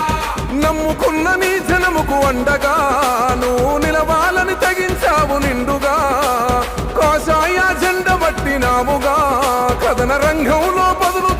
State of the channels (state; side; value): identical; both; correlation 1.00